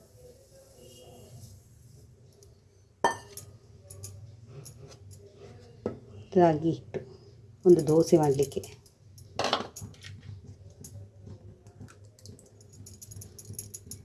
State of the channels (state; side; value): identical; both; correlation 1.00